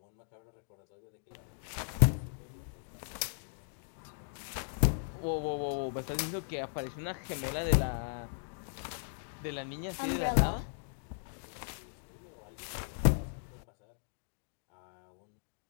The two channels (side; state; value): right; silent; digital silence